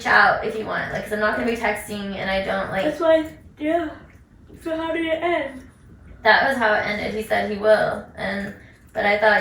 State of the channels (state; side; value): identical; both; correlation 1.00